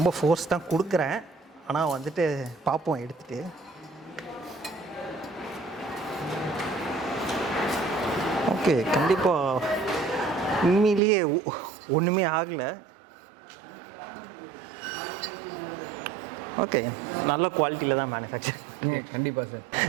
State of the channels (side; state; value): left; drops out; at 11.0 s